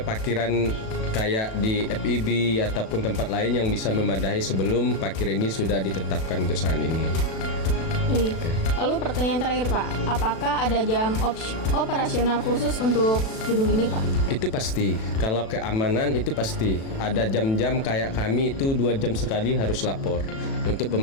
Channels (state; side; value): late; right; 36 ms